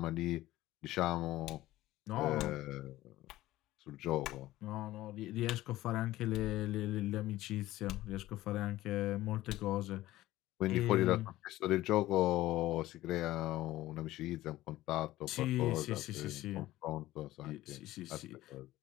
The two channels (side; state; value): right; quieter; 16.2 dB